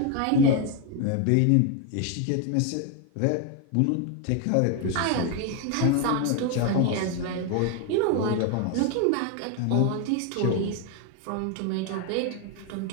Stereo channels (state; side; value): different; both; correlation 0.01